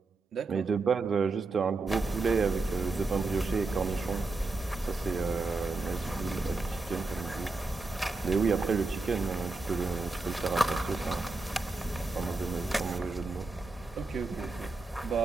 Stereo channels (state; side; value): quieter; left; 3.6 dB